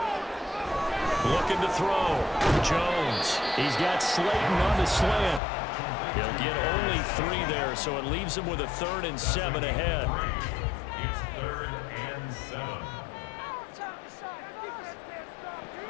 Looking to throw. Jones. He's got Slayton on the slant. He'll get only 3 there, so it leaves him with a 3rd and 7 ahead. It's 3rd and 7.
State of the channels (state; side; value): drops out; right; at 5.4 s